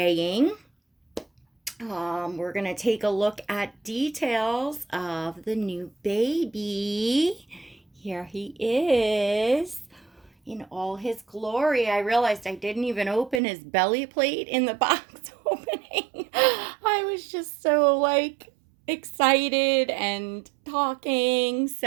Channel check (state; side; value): drops out; left; at 13.4 s